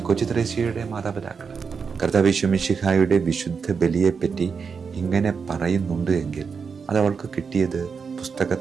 കൊച്ചുത്രേസ്യയുടെ മാതാപിതാക്കൾ. കർത്താവ് ഈശോ മിശിഹായുടെ വിശുദ്ധ ബലിയെപ്പറ്റി ഇങ്ങനെ പറയുന്നുണ്ട് എങ്കിൽ അത് അവൾക്ക് കിട്ടിയത്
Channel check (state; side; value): quieter; left; 5.7 dB